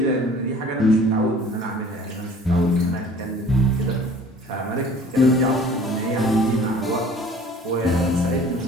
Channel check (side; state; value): both; normal; correlation 0.48